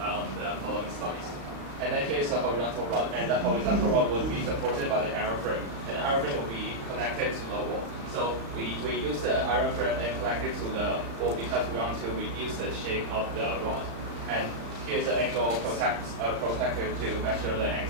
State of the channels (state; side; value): late; left; 36 ms